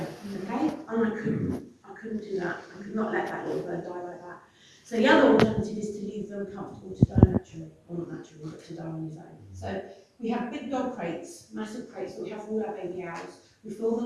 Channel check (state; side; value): identical; both; correlation 1.00